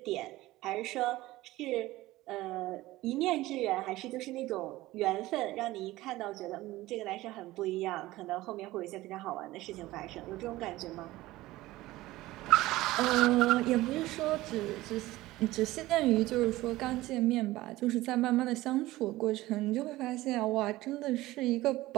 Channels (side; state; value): left; quieter; 17.7 dB